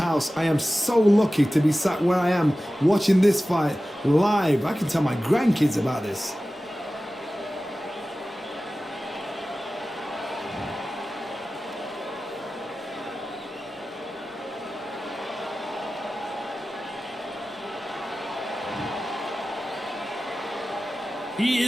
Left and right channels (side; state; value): both; normal; correlation 0.95